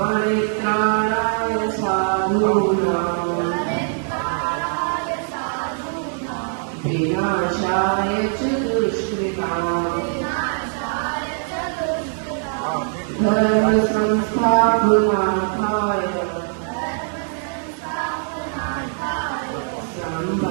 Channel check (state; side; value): silent; left; 62 dB below the other